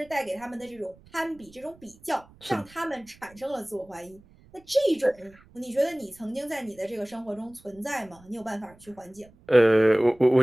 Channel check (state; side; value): noise; right; rumble, 26 dB below the sound